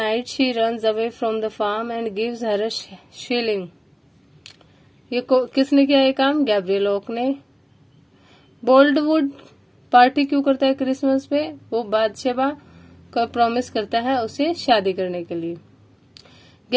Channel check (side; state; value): both; identical; correlation 1.00